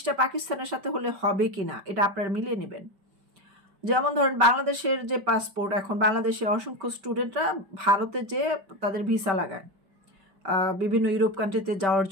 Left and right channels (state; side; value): late; left; 5.2 ms